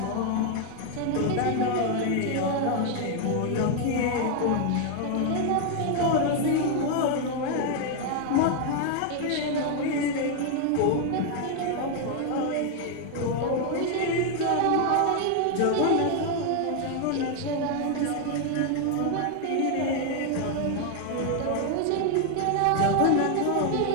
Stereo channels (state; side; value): different; both; correlation 0.01